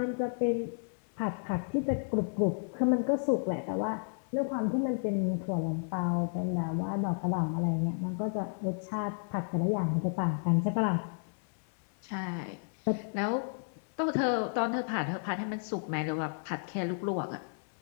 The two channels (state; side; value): silent; right; digital silence